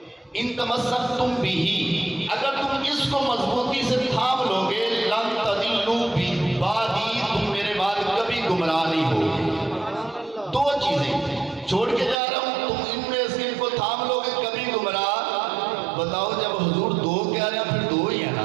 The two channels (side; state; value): left; drops out; at 12.2 s